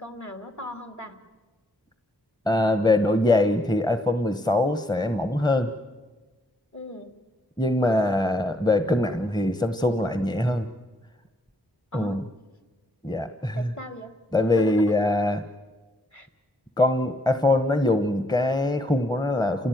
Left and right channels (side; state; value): both; normal; correlation 0.72